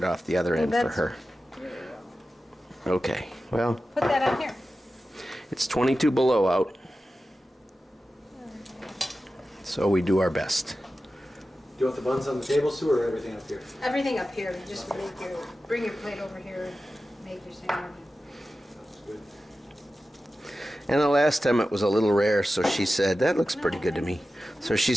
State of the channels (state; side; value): normal; both; correlation 0.93